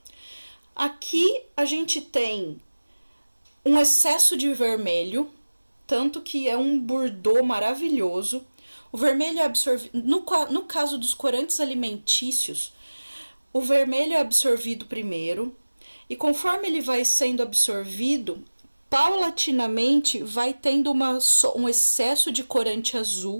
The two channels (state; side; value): inverted; both; correlation -1.00